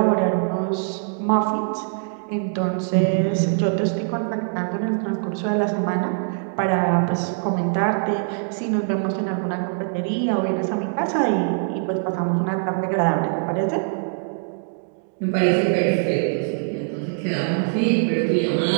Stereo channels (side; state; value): left; silent; digital silence